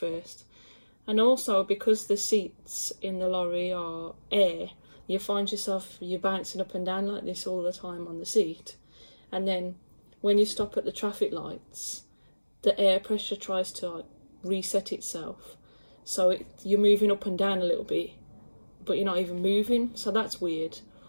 And also, because the seats in the lorry are air, you find yourself, you're bouncing up and down like this all the time on the seat. And then when you stop at the traffic lights, the air pressure tries to reset itself. So you're moving up and down a little bit, but you're not even moving, so that's weird.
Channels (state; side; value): inverted; both; correlation -1.00